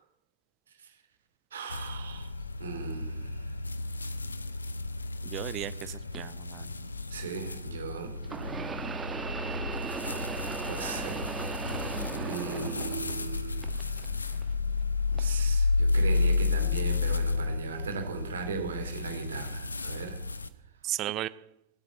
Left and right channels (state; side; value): inverted; both; correlation -0.65